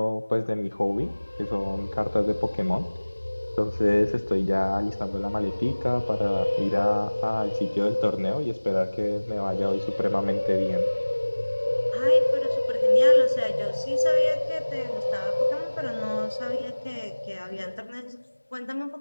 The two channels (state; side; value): inverted; both; correlation -1.00